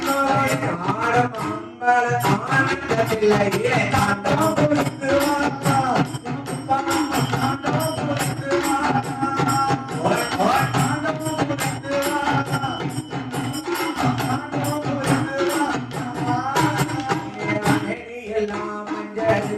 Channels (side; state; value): both; identical; correlation 1.00